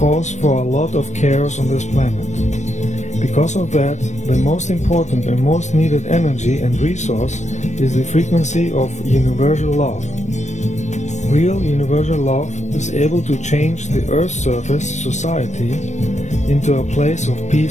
for a lot of chaos on this planet. Because of that, the most important and most needed energy and resource is the frequency of universal love. Real universal love is able to change the Earth's surface society into a place of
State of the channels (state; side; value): late; right; 0.34 ms